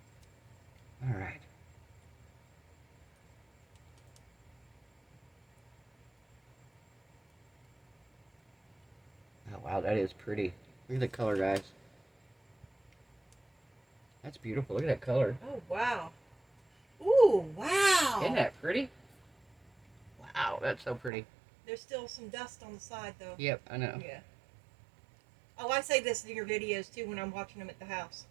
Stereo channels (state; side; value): drops out; left; at 21.1 s